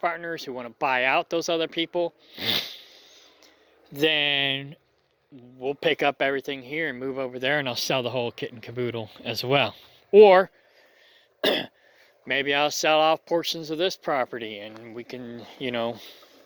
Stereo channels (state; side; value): identical; both; correlation 1.00